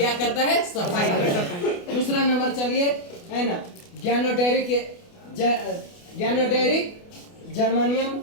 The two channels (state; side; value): late; right; 28 ms